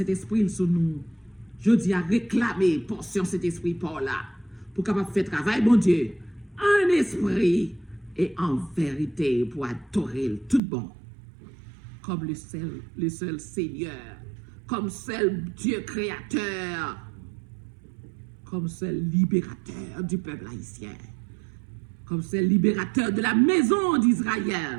esprit sur nous. Je dis à réclamer portion cet esprit par là. Pour capable faire travail, bon Dieu. Un esprit et en vérité pour adorer le tout bon. Comme le seul Seigneur. Comme seul Dieu créateur. Comme seul libérateur du peuple haïtien. Comme seul libérateur de la maison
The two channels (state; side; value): drops out; left; at 10.6 s